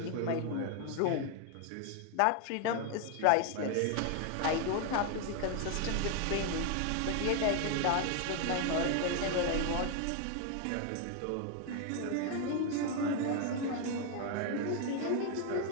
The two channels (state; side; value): different; both; correlation 0.01